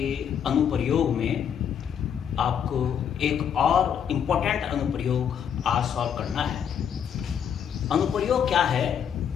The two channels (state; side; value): quieter; right; 8.3 dB